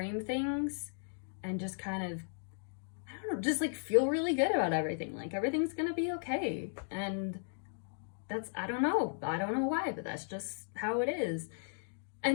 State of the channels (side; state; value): right; silent; digital silence